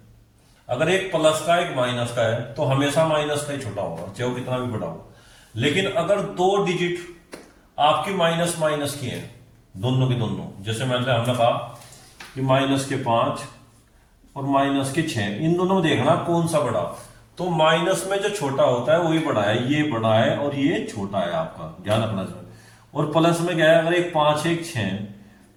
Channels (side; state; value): both; identical; correlation 1.00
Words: अगर एक प्लस का एक माइनस का है तो हमेशा माइनस का ही छोटा होगा, चाहे वो कितना भी बड़ा हो। लेकिन अगर 2 डिजिट आपकी माइनस माइनस की है, दोनों की दोनों, जैसे हमने कहा कि -5 और -6, इन दोनों में देखना कौन सा बड़ा। तो माइनस में जो छोटा होता है वही बड़ा है, ये बड़ा है और ये छोटा है, आपका ध्यान रखना चाहिए। और प्लस में क्या है, अगर एक 5 एक 6,